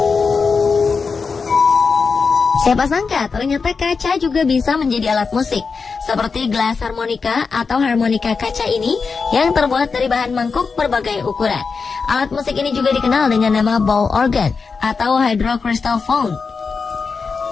Siapa sangka ternyata kaca juga bisa menjadi alat musik, seperti gelas harmonika atau harmonika kaca ini yang terbuat dari bahan mangkuk berbagai ukuran. Alat musik ini juga dikenal dengan nama ball organ atau hydrocrystal phone.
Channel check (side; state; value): right; quieter; 5.0 dB